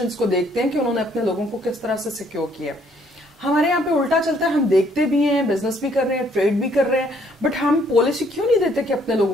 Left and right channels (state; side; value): normal; both; correlation 0.65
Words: کو دیکھتے ہیں کہ انہوں نے اپنے لوگوں کو کس طرح سے سیکیور کیا. ہمارے یہاں پہ الٹا چلتا ہے, ہم دیکھتے بھی ہیں, بزنس بھی کر رہے ہیں, ٹریڈ بھی کر رہے ہیں, بٹ ہم پالیسی کیوں نہیں دیتے کہ اپنے